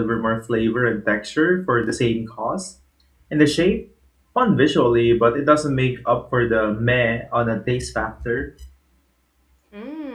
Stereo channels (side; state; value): both; identical; correlation 1.00